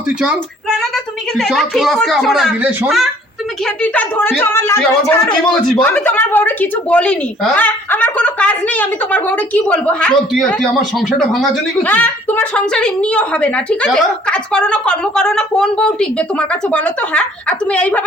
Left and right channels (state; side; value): normal; both; correlation 0.57